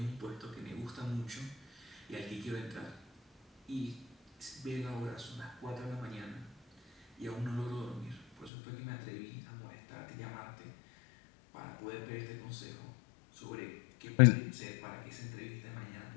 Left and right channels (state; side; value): drops out; right; at 8.5 s